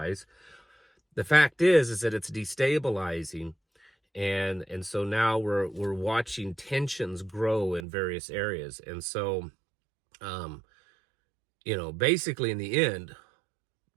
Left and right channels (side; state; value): left; drops out; at 7.9 s